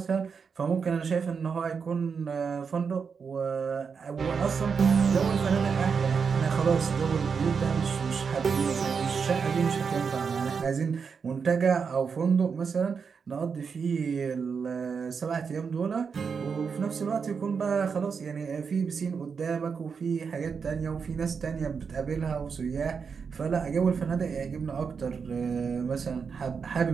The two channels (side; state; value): left; quieter; 5.9 dB